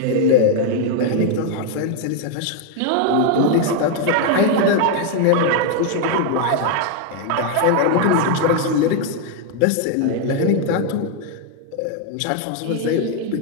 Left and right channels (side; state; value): both; different; correlation 0.00